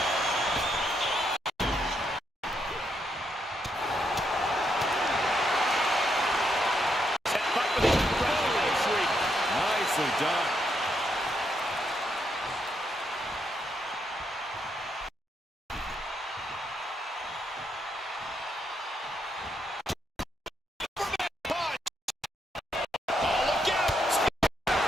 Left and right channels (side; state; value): both; normal; correlation 0.78